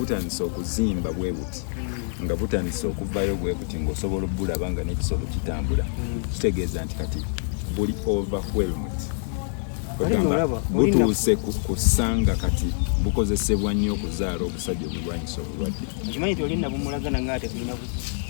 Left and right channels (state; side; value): silent; right; digital silence